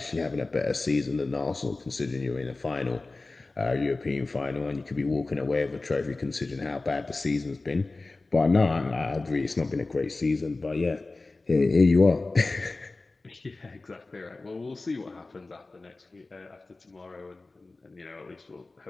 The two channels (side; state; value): right; quieter; 3.3 dB